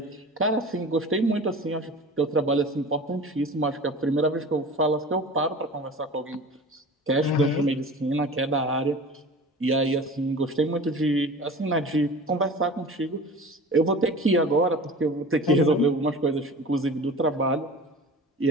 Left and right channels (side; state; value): both; normal; correlation 0.38